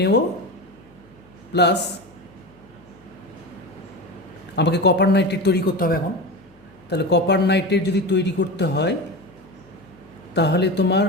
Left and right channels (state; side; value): noise; left; hum, 30 dB below the sound